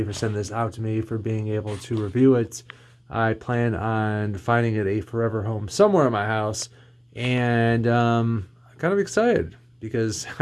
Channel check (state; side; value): identical; both; correlation 1.00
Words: for sending this out to me, for being able to review it. I plan on finding it a forever home somewhere in my house, and I'm kind of excited because